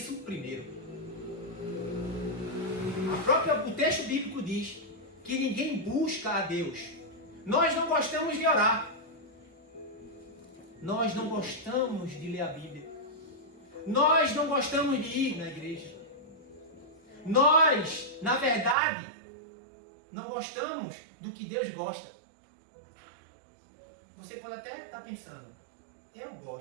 primeiro. O texto bíblico diz que ninguém busca a Deus. Nós não gostamos de orar. Nós não gostamos de ler a Bíblia. Nós não gostamos de ir na igreja. Nós, na verdade, não gostamos do que Deus gosta. Você pode até estar pensando, eu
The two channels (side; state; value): left; drops out; at 18.8 s